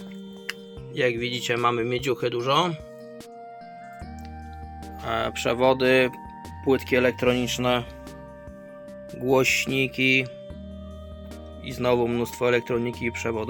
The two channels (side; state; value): both; identical; correlation 1.00